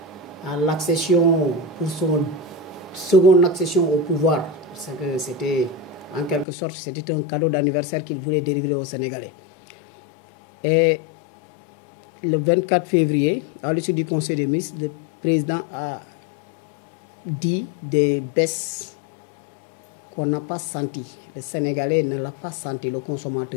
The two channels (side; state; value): right; drops out; at 6.5 s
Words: à l'accession, pour son seconde accession au pouvoir. Parce que c'était, en quelque sorte, c'était un cadeau d'anniversaire qu'il voulait délivrer aux Sénégalais. Et le 24 février, à l'issue du Conseil des ministres, le président a dit des baisses qu'on n'a pas senti. Le Sénégalais ne l'a pas senti, le